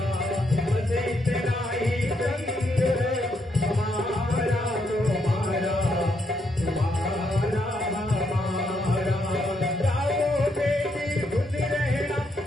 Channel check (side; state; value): both; normal; correlation 0.77